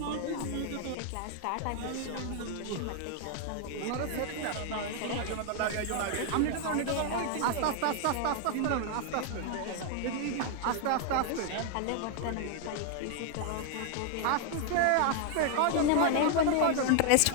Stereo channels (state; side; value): different; both; correlation 0.00